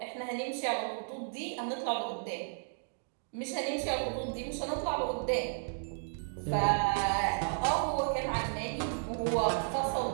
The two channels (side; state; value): left; silent; digital silence